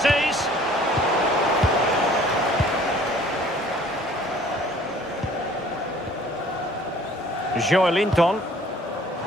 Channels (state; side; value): normal; both; correlation 0.53